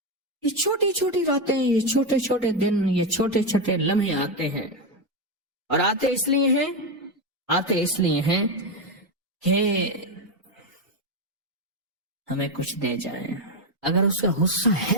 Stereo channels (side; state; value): both; normal; correlation 0.09